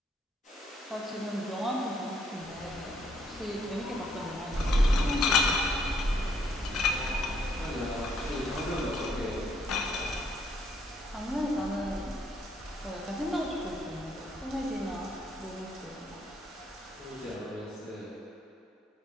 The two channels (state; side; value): normal; both; correlation 0.70